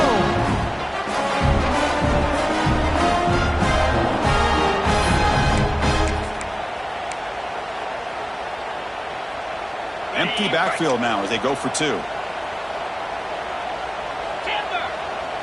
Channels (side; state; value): both; identical; correlation 1.00